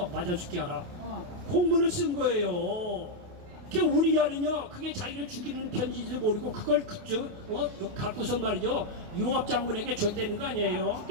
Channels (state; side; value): late; left; 28 ms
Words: 맞아 죽게 하라. 공문을 쓴 거예요. 우리아는요 그게 자기를 죽이는 편지도 모르고 그걸 갖고서 말이죠 요압 장군에게 줬다는 거 아니에요.